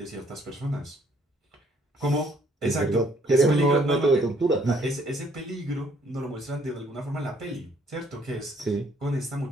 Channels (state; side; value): normal; both; correlation 0.64